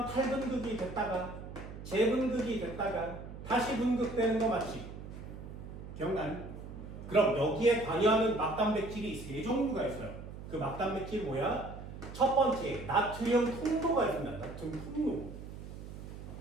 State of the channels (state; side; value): noise; right; hum, 11 dB below the sound